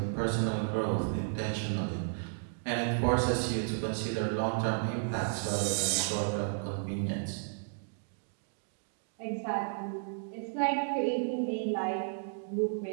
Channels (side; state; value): left; silent; digital silence